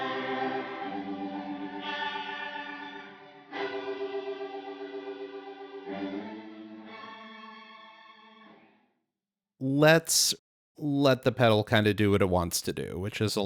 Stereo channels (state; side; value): identical; both; correlation 1.00